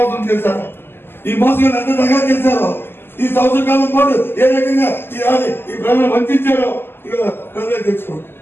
చేశారో, ఈ మోసగాళ్ళు ఎంత దగా చేశారో, ఈ సంవత్సర కాలం పాటు ఏ రకంగా ఈ ప్రజలు వంచారో ఇక ప్రజలే తెలుసుకోండి.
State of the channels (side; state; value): right; late; 0.11 ms